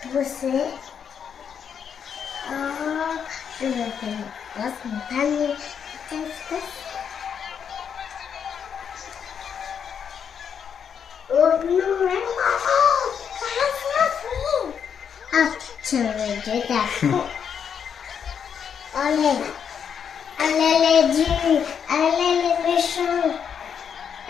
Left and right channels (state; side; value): quieter; right; 7.5 dB